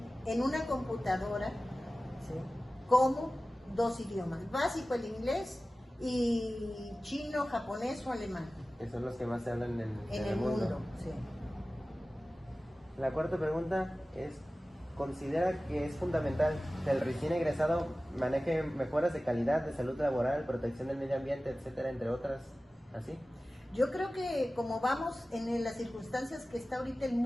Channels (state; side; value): normal; both; correlation 0.96